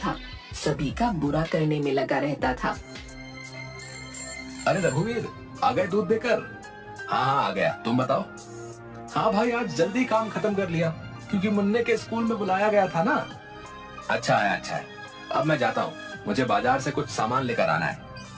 सभी का बुरा करने में लगा रहता था। अरे रघुवीर, आ गए दूध देकर? हाँ आ गया, तुम बताओ। हाँ भाई, आज जल्दी काम खत्म कर लिया क्योंकि मुन्ने के स्कूल में बुलाया गया था ना। अच्छा है। अब मैं जाता हूँ, मुझे बाजार से कुछ सामान लेकर आना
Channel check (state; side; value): identical; both; correlation 1.00